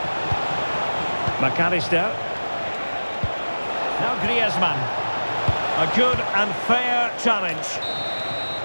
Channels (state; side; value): inverted; both; correlation -1.00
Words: McAllister. Now Griezmann. A good and fair challenge.